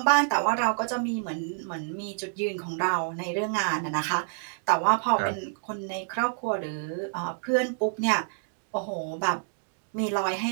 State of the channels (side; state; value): left; silent; digital silence